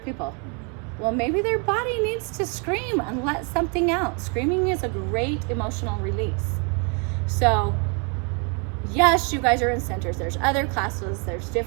Well, maybe their body needs to scream and let something out. Screaming is a great emotional release. So, yes, you guys are in centers. There's other classes, there's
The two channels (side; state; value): left; quieter; 36.2 dB